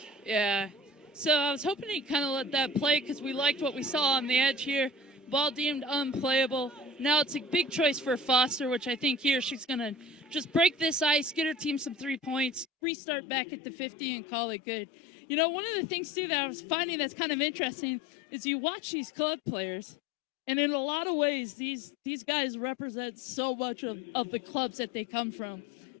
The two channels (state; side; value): drops out; right; at 12.7 s